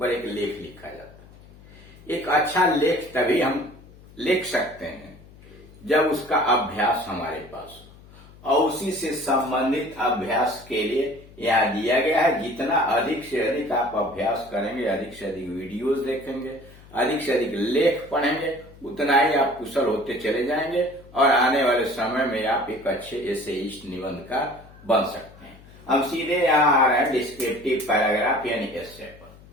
एक लेख लिखा जाता है। एक अच्छा लेख तभी हम लिख सकते हैं जब उसका अभ्यास हमारे पास हो, और उसी से संबंधित अभ्यास के लिए यहाँ दिया गया है। जितना अधिक से अधिक आप अभ्यास करेंगे, अधिक से अधिक वीडियोस देखेंगे, अधिक से अधिक लेख पढ़ेंगे, उतना ही आप कुशल होते चले जाएंगे और आने वाले समय में आप एक अच्छे एसेइस्ट निबंधकार बन सकते हैं। हम सीधे यहाँ आ रहे हैं डिस्क्रिप्टिव पैराग्राफ यानी एस्से पर।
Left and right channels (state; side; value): noise; left; hum, 22 dB below the sound